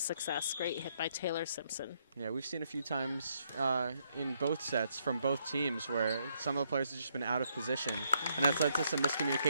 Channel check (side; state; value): both; inverted; correlation -0.74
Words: Great hit by Taylor Simpson. Yeah, we've seen a few times in both sets from both teams where some of the players have just been out of position. And that's led to some